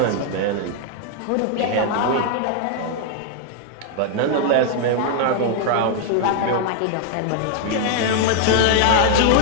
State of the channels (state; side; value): different; both; correlation 0.00